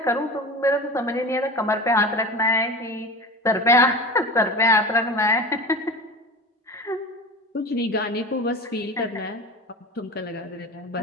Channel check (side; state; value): both; normal; correlation 0.31